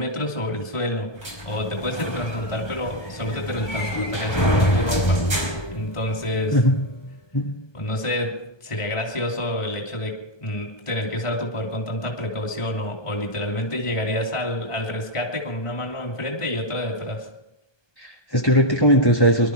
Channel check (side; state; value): right; late; 1.2 ms